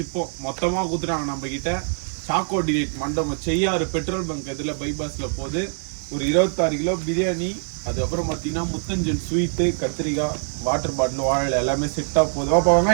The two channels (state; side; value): silent; left; 62 dB below the other